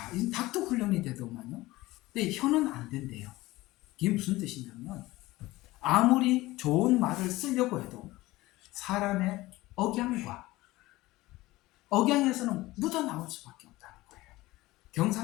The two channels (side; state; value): right; quieter; 18.8 dB